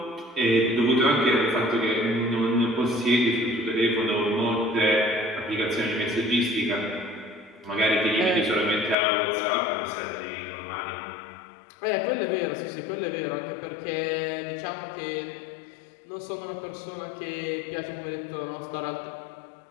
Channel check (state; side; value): drops out; right; at 9.0 s